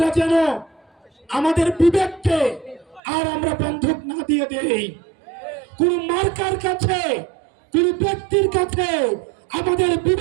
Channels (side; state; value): left; drops out; at 3.0 s